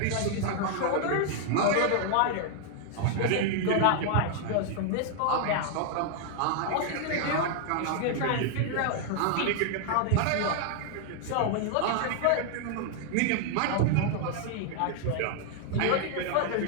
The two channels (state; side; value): different; both; correlation 0.00